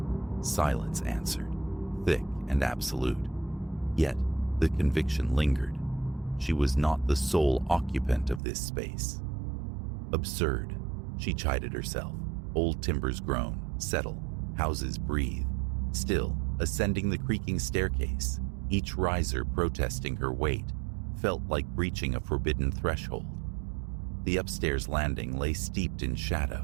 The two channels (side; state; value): left; drops out; at 8.4 s